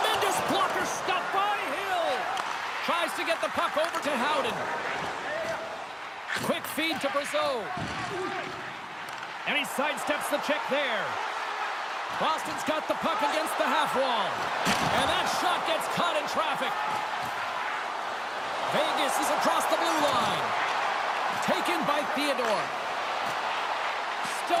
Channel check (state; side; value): identical; both; correlation 1.00